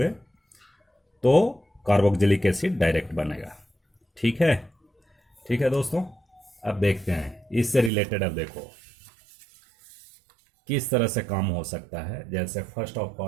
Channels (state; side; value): drops out; left; at 7.9 s